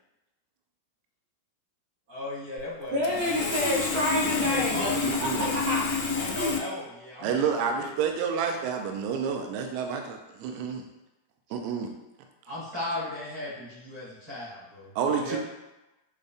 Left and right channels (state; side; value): late; left; 17 ms